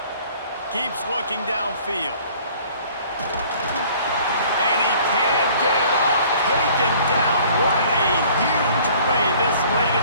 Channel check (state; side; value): inverted; both; correlation -0.53